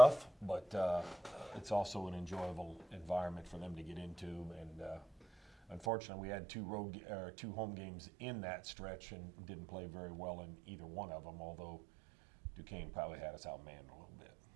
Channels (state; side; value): drops out; left; at 5.9 s